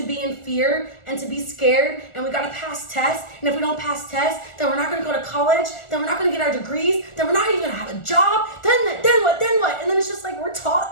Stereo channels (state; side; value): late; right; 1.4 ms